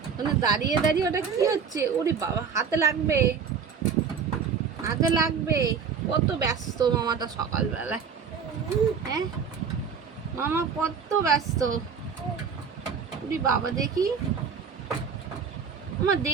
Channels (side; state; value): left; quieter; 6.4 dB